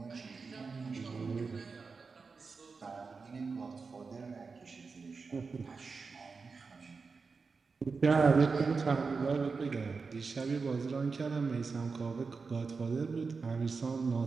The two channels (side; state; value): left; quieter; 4.7 dB